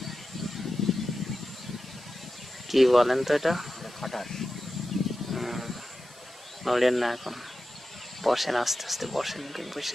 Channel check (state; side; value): normal; both; correlation 0.92